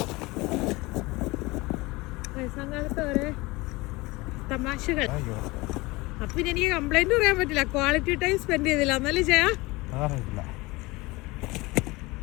തമാശകൾ. അപ്പൊ പിന്നെ എനിക്ക് കംപ്ലൈന്റ് പറയാൻ പറ്റില്ല. ക്വാളിറ്റി ടൈം സ്പെൻഡ് ചെയ്തില്ല എന്നല്ലേ ചെയ്യാ.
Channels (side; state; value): right; quieter; 22.4 dB